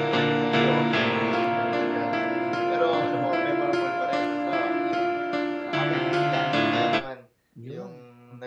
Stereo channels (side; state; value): both; identical; correlation 1.00